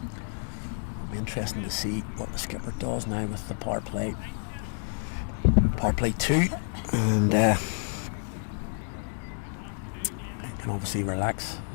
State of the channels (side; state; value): right; silent; 58 dB below the other